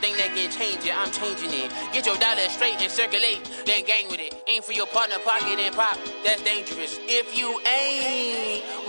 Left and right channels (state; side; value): inverted; both; correlation -1.00